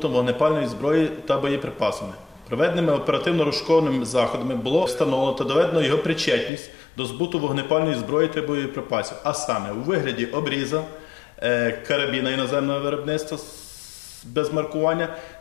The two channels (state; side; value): drops out; right; at 6.5 s